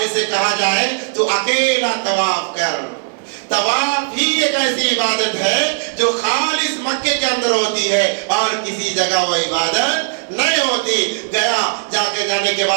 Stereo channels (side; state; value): left; silent; digital silence